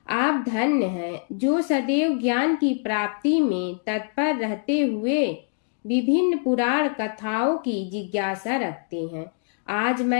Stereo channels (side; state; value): right; silent; digital silence